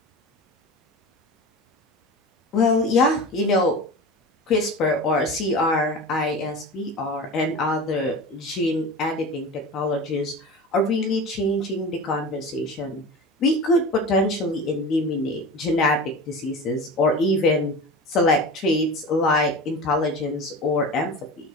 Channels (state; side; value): normal; both; correlation 0.32